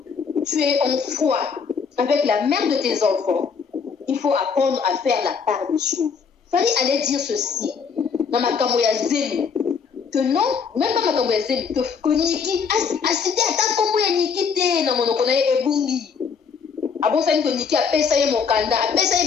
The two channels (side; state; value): right; quieter; 6.0 dB